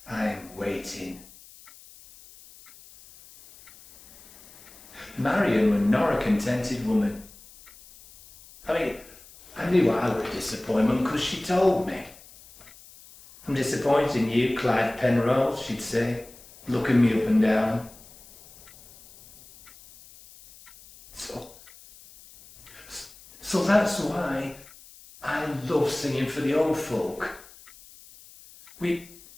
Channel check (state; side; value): noise; left; hiss, 22 dB below the sound